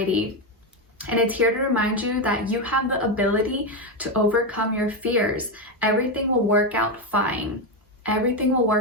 And it's here to remind you that you have the ability to overcome your fears. Everything will work out fine. Everything will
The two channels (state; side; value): normal; both; correlation 0.09